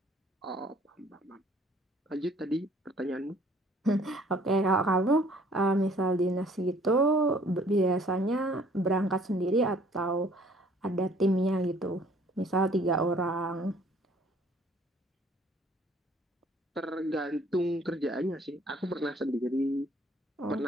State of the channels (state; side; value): normal; both; correlation 0.58